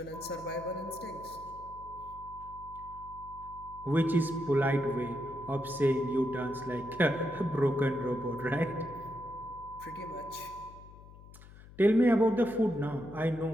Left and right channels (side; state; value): left; noise; hum, 19 dB below the sound